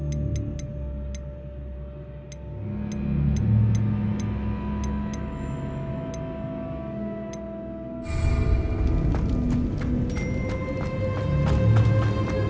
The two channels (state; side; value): identical; both; correlation 1.00